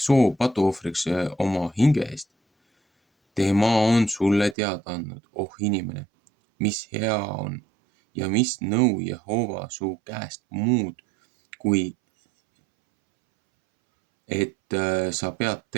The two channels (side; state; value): left; drops out; at 4.5 s